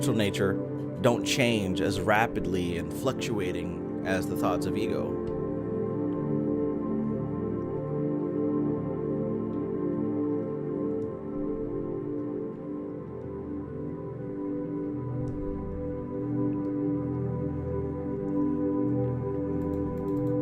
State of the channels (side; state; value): both; identical; correlation 1.00